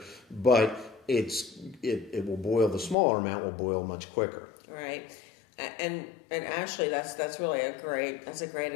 but it will boil, the smaller amount will boil much quicker. Right. And actually, that's really a great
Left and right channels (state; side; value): drops out; right; at 3.0 s